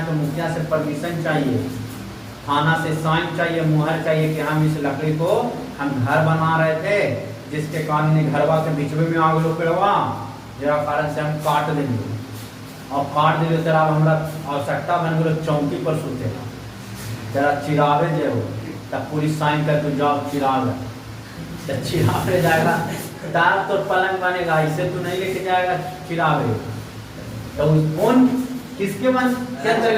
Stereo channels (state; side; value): identical; both; correlation 1.00